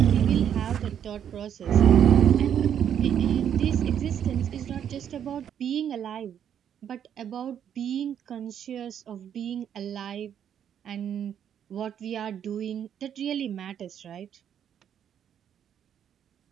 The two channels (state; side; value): quieter; left; 9.1 dB